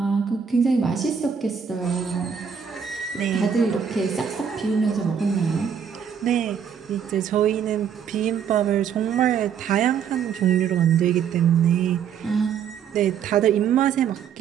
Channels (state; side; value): quieter; left; 7.6 dB